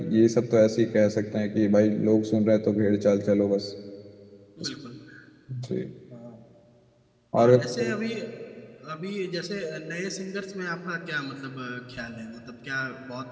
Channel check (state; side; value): identical; both; correlation 1.00